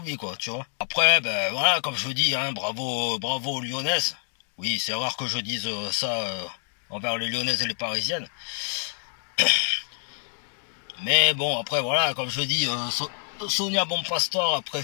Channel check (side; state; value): right; silent; 60 dB below the other